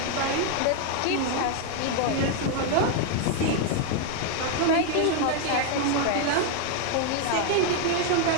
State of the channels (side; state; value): both; different; correlation 0.00